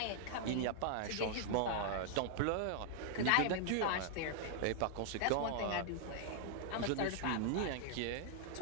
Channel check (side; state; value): both; different; correlation 0.00